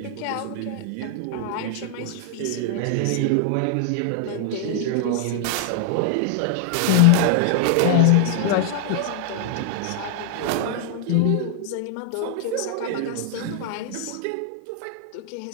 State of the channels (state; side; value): different; both; correlation 0.00